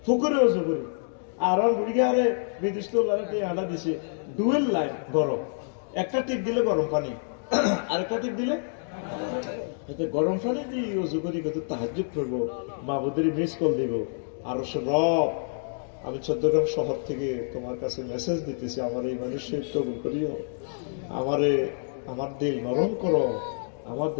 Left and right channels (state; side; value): silent; right; digital silence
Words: পুকুরে ওজু করে আর বুড়িগারে বিদেশ তো আডা দিছে ডুয়েল লাইন গরম একটা টিপ দিলে গরম পানি আর একটা টিপ দিলে গরম পানি দিয়ে ওজু করি কত তাহাজ্জুদ করবো মাহবুদের মিস কল দিব আর রব আমি চট্টগ্রাম শহর থেকে তোমার কাছে মেসেজ দিতেছি আমার এই মানুষের কবুল করিও আমারে আমার দিল নরম করো আমার